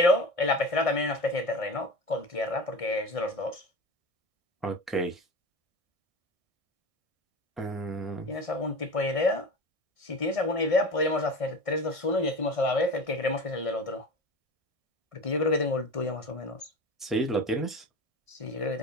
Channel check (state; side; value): late; left; 1.6 ms